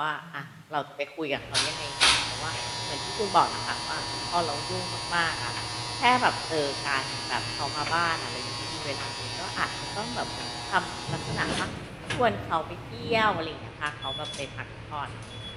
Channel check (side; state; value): both; identical; correlation 1.00